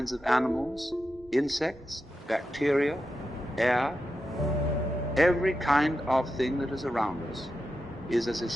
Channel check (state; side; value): normal; both; correlation 0.89